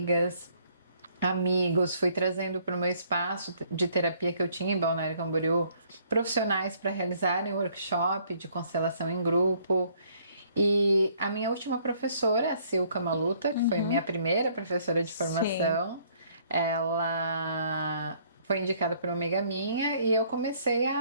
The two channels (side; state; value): both; inverted; correlation -0.63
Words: amigos, fui trazendo para o meu espaço de terapia que eu tinha em Balneário Camboriú profissionais para realizarem workshop de constelação em grupo. E a minha última professora, a Silka Maluta, que foi minha primeira professora de formação, ela foi indicada por uma amiga minha e eu comecei